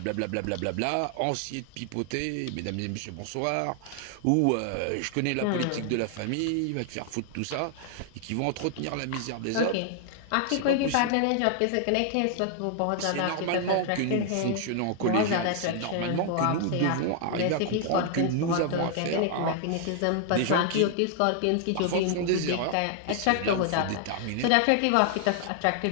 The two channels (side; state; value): both; different; correlation 0.00